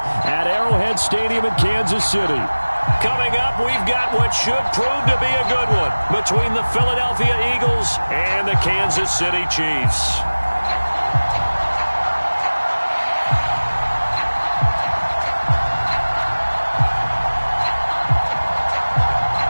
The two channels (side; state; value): both; inverted; correlation -1.00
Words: Arrowhead Stadium in Kansas City. Coming up, we've got what should prove to be a good one between the Philadelphia Eagles and the Kansas City Chiefs.